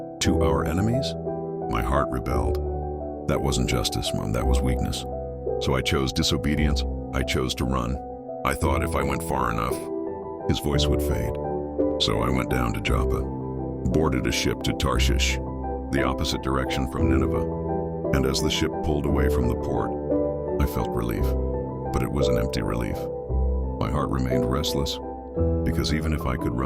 to our enemies? My heart rebelled. That wasn't justice, Mom, that was weakness. So I chose disobedience. I chose to run. I thought if I went far enough, his voice would fade. So I went down to Joppa, boarded a ship to Tarshish, the opposite direction from Nineveh. And as the ship pulled away from the port, I felt relief, but it was an empty relief. My heart remained restless, because even if I could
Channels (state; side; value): identical; both; correlation 1.00